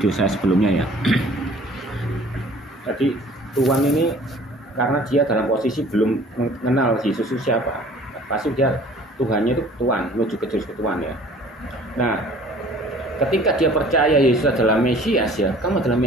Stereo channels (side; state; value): both; normal; correlation 0.50